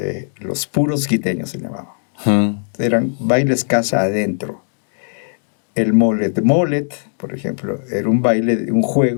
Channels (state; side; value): silent; right; digital silence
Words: los puros quiteños, se llamaban. Eran bailes casa adentro. El molet, por ejemplo, era un baile, un